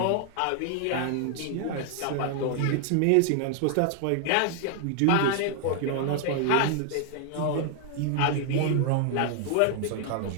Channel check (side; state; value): both; different; correlation 0.00